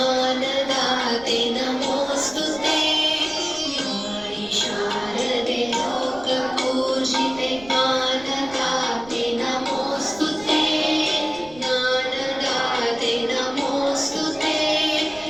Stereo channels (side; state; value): right; noise; rumble, 21 dB below the sound